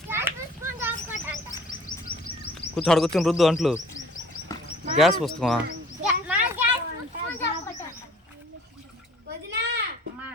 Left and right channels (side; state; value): both; normal; correlation 0.52